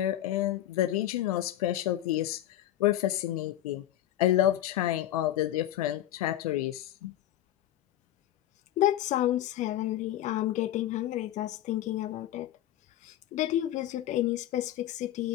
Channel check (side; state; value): right; quieter; 13.1 dB